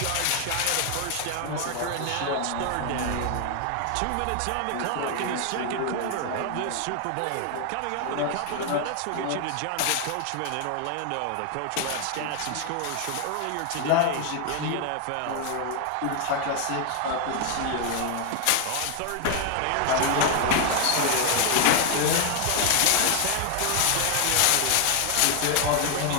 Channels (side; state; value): both; different; correlation 0.00